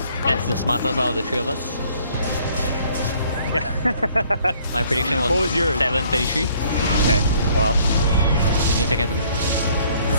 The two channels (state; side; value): inverted; both; correlation -0.61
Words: That's the smartest out of the three of us. Yeah. My prediction was, 7:33. Okay, well. Need to get to